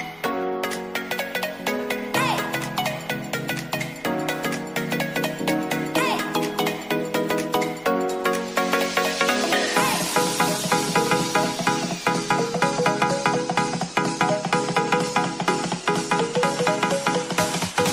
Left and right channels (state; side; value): noise; left; hum, 29 dB below the sound